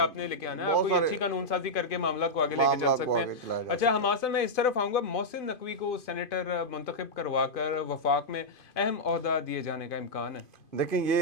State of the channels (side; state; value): right; late; 2.5 ms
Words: نے لے کے آنا ہے, آپ بہت کوئی سارے اچھی قانون سازی کر کے معاملات کو آگے لے کے چل معاملات کو سکتے آگے ہیں. چلایا جا اچھا حماسہ میں اس طرف آؤں گا, محسن نقوی کو سینیٹر منتخب کروا کر وفاق میں اہم عہدہ دیے جانے کا امکان ہے. دیکھیں